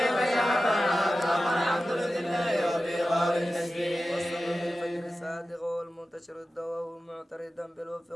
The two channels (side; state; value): both; normal; correlation 0.94